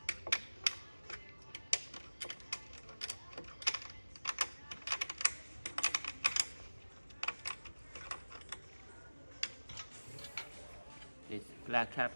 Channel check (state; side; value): inverted; both; correlation -1.00